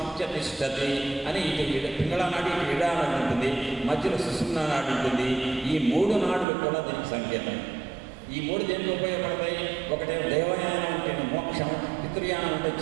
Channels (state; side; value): drops out; left; at 6.5 s